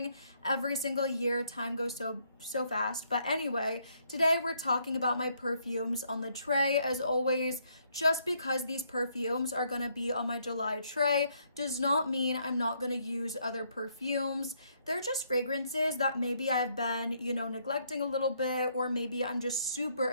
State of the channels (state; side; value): inverted; both; correlation -0.71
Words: every single year. Time goes so fast. But anyway, today we're talking about my perfumes on the tray. As always, just because these perfumes are going to be on my July tray does not mean I'm not going to use other perfumes. They're just fragrances that maybe I've been, neglecting a little bit, or maybe I'm just super